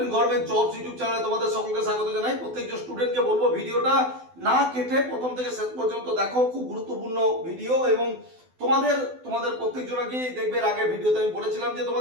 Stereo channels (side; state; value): left; late; 12 ms